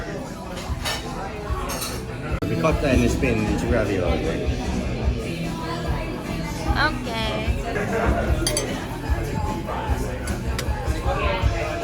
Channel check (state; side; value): identical; both; correlation 1.00